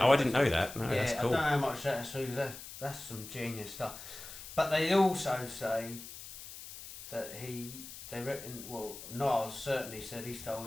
Oh, I didn't know that. No, Yeah, that's cool. I don't know how much that's true. That's some genius stuff. But they also say that they reckon, well, Nas certainly said he stole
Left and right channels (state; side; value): noise; left; hiss, 13 dB below the sound